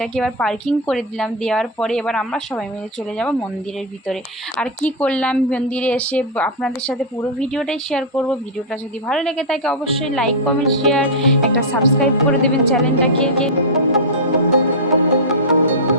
এবার পার্কিং করে দিলাম, দেওয়ার পরে এবার আমরা সবাই মিলে চলে যাব মন্দিরের ভিতরে। আর কি করলাম মন্দিরে এসে আপনাদের সাথে পুরো ভিডিওটাই শেয়ার করব। ভিডিওটা যদি ভালো লেগে থাকে অবশ্যই লাইক, কমেন্ট, শেয়ার, একটা সাবস্ক্রাইব করে দেবেন চ্যানেলটাকে।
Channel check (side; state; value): both; normal; correlation -0.05